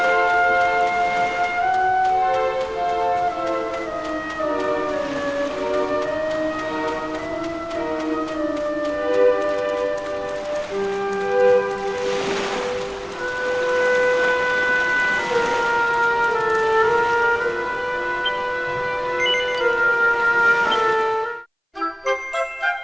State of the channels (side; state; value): both; identical; correlation 1.00